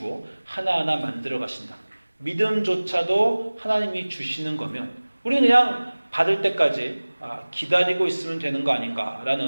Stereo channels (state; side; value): inverted; both; correlation -1.00